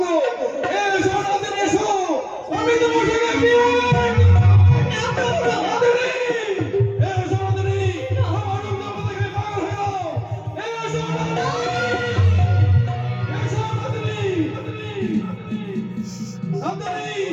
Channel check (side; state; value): both; identical; correlation 1.00